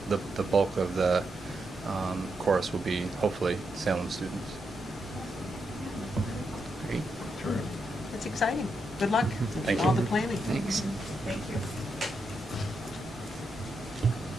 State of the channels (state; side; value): normal; both; correlation 0.83